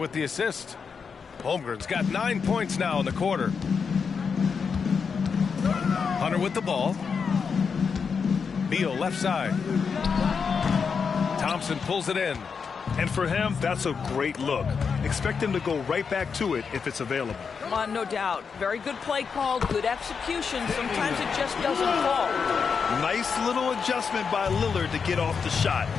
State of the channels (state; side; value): quieter; right; 5.9 dB